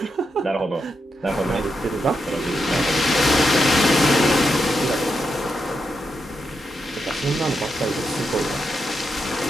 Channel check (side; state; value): both; normal; correlation 0.84